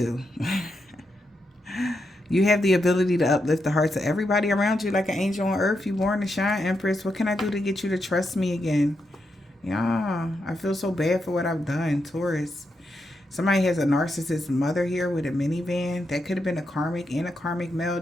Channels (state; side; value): normal; both; correlation 0.84